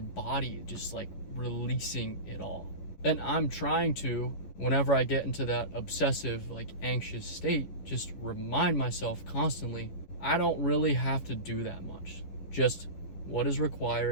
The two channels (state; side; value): late; right; 11 ms